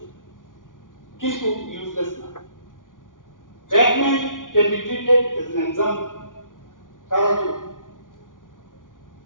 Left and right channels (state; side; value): late; right; 0.88 ms